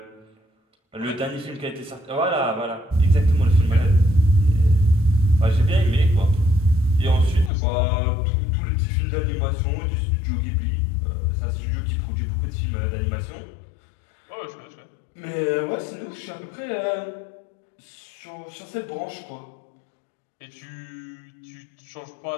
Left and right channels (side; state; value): right; drops out; at 7.5 s